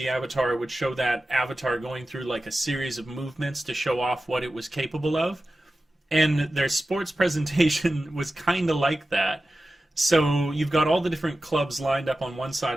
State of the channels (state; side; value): normal; both; correlation 0.94